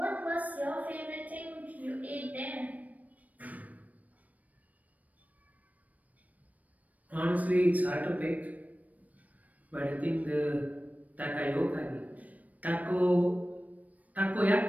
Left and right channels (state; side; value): late; left; 0.073 ms